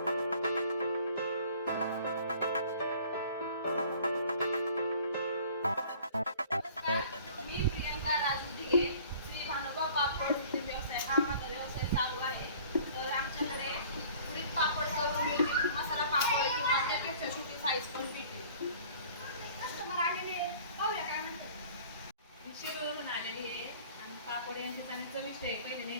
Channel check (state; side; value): inverted; both; correlation -0.50